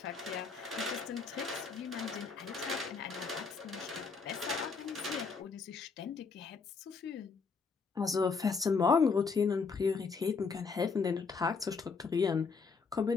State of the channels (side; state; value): right; quieter; 4.9 dB